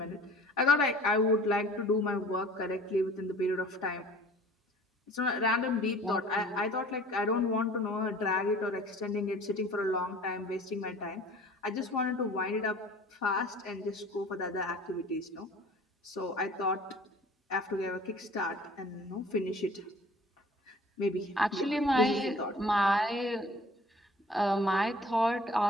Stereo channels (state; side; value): normal; both; correlation 0.48